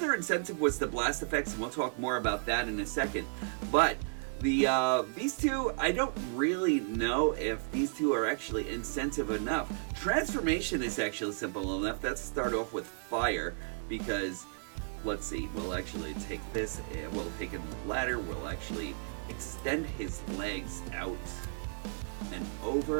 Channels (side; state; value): left; silent; 55 dB below the other